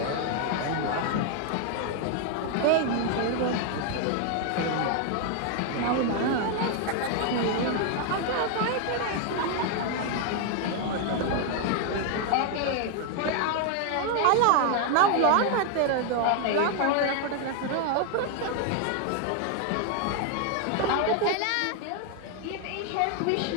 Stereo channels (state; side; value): different; both; correlation 0.00